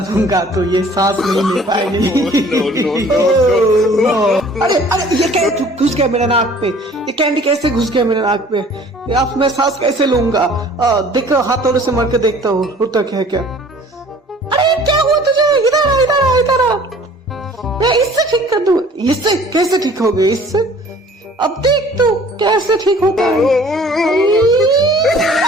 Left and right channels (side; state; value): both; normal; correlation 0.51